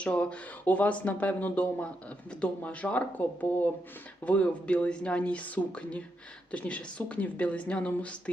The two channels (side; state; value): both; normal; correlation 0.82